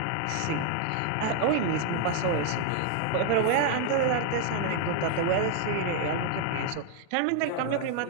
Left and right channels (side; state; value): both; different; correlation 0.00